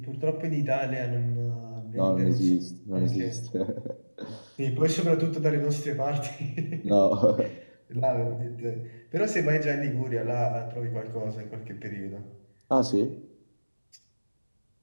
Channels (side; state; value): both; inverted; correlation -1.00